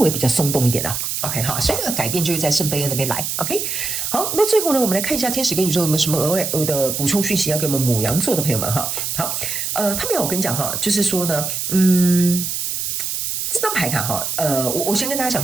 比較鬆動一點了。OK 好，所以這個改變就是在聖杯2那邊來。OK 好，那最後呢，我們來看一下天使跟宇宙有沒有什麼額外的補充訊息要給我們牡羊座的朋友們哈。好，他們要我跟你講哈，就是說呢，這張牌卡哈，我先跟大家講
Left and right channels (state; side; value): noise; right; hiss, 2 dB below the sound